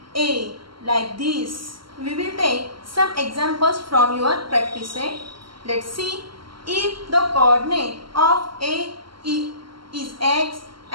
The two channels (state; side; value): late; left; 0.74 ms